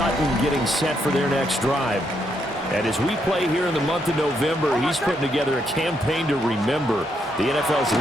getting set for their next drive. And as we play here in the month of November, he's putting together a campaign to remember, the NFL's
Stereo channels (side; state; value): both; normal; correlation 0.77